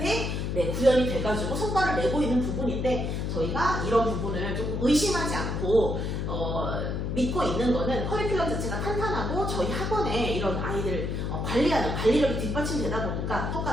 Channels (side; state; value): left; noise; hum, 2 dB below the sound